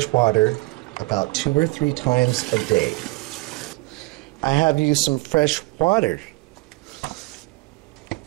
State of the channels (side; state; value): left; quieter; 23.5 dB